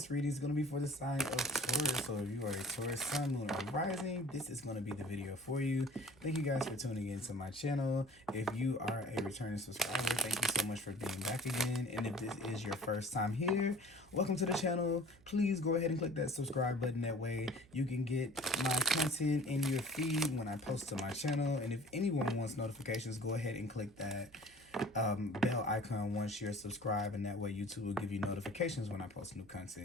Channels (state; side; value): noise; right; hum, 26 dB below the sound